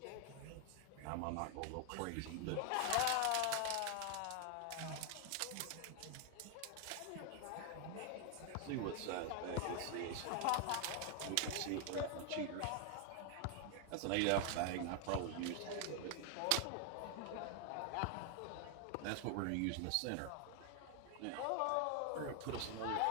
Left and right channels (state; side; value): different; both; correlation 0.00